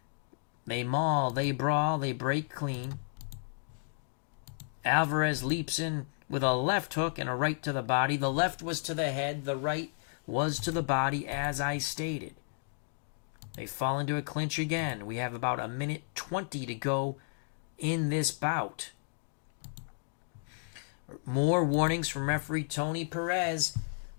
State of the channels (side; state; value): right; silent; digital silence